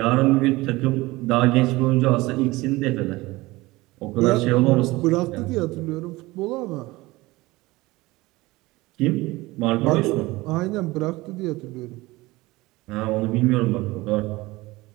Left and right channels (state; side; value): quieter; left; 20.5 dB